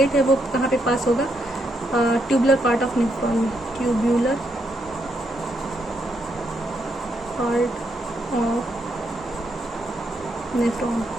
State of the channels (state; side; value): normal; both; correlation 0.78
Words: है वो कहाँ पे पास होगा, ट्यूबुलर पार्ट ऑफ नेफ्रॉन में, ट्यूबुलर